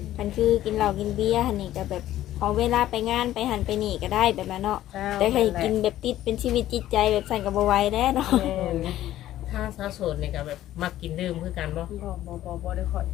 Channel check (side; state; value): right; quieter; 13.5 dB